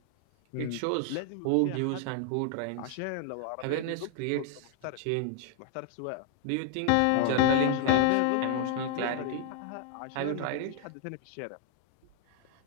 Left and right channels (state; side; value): different; both; correlation 0.00